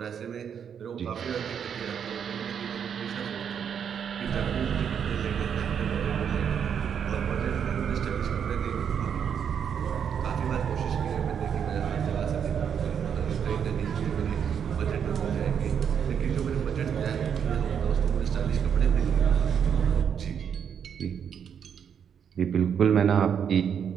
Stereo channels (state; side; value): quieter; left; 7.8 dB